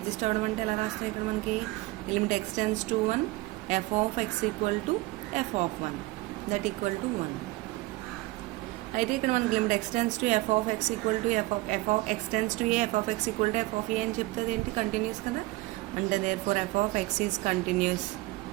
అవ్వడం అంటే ఎలా రాస్తాం? ఇక్కడ మనకి limit x tends to 1 f of x equal to f of 1 that equal to 1. అయితే ఇక్కడ మనకి limit x tends to f of x equal to f of x tends to a f of x equal to f of a అని చెప్తుంది ఏంటి continuous కదా అంటే there for f of x is continuous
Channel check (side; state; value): left; quieter; 21.1 dB